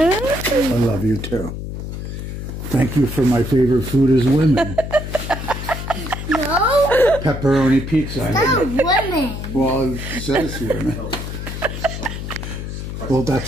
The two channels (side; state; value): left; noise; hum, 7 dB below the sound